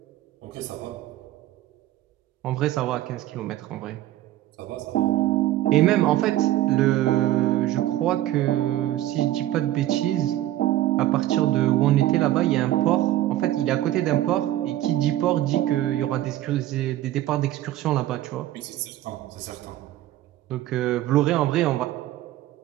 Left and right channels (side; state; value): left; quieter; 14.3 dB